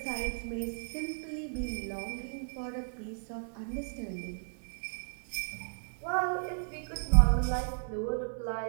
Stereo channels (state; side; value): silent; left; 55 dB below the other